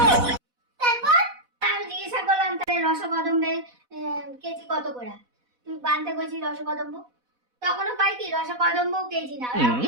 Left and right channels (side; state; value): left; late; 4.1 ms